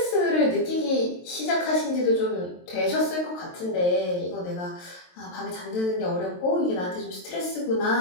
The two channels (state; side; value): late; right; 23 ms